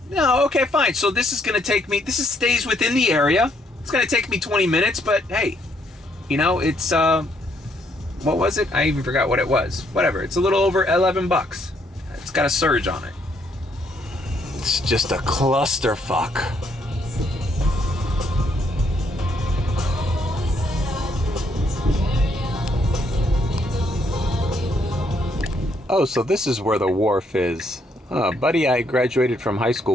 no, okay, fine. So this is gonna take me, stays within the area. It's gonna take me 20 minutes, but hey, you know, it's, what was it? I even forgot what it was. Whatever, it's a little over $11. It's got a surge on it. It's just a clusterfuck. Oh, so this is where the wharf is. Buddy I graduated from high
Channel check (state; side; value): normal; both; correlation 0.71